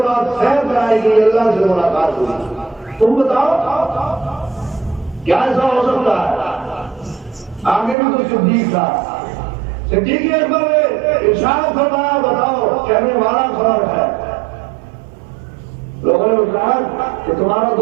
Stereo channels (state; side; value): drops out; left; at 8.0 s